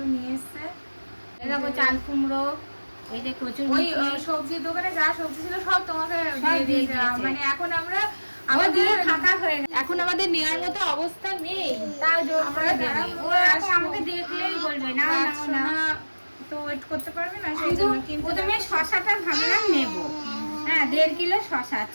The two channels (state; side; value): inverted; both; correlation -1.00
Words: নিয়ে এসছে। দেখো চাল কুমড়ো, এই যে কচুর ওই সবজির দোকানে যা সবজি ছিল সব তোমাকে দিয়ে দিয়েছে। মানে এখন আমরা আমাদের ফাঁকা হয়ে গেছে, এখন আমাদের নেওয়ার মতো অবস্থা নেই। তাও জোর করে আমরা দেবে। দাঁড়াবো, ও এখন আমাকে দেখলেই বলবে না না না, তো ওয়েট করতে পারবে না, সেই জন্য কিন্তু প্রথমে শশাটা ভাবলাম নেব। হ্যাঁ 1.5 কিলো শশা,